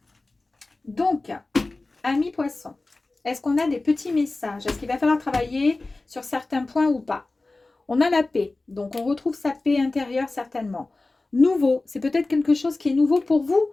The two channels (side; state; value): right; quieter; 3.2 dB